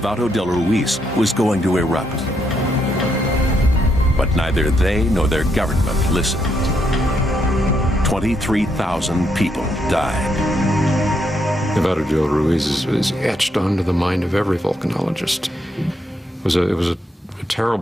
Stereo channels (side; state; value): both; normal; correlation 0.77